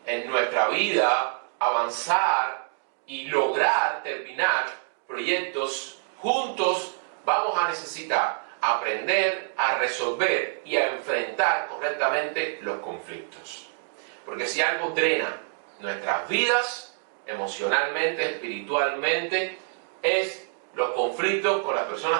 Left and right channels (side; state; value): left; silent; digital silence